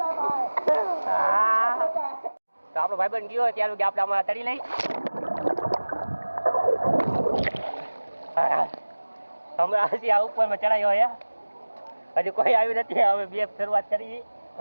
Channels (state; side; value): inverted; both; correlation -1.00